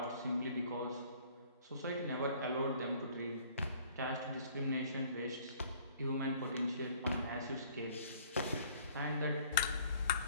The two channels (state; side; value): inverted; both; correlation -0.57